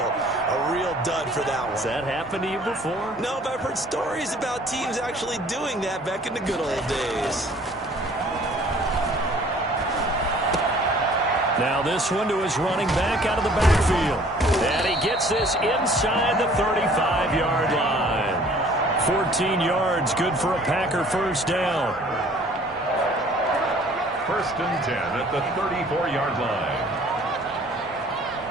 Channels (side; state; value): both; normal; correlation 0.54